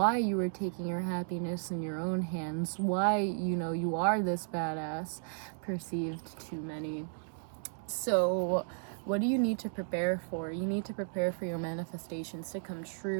you are taking your happiness in your own hands, why, you are this badass perceived to many. So what do you need to prepare for? You need to prepare for your manifestations to come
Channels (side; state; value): left; silent; digital silence